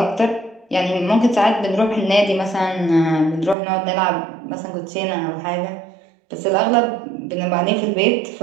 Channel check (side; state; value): left; drops out; at 3.6 s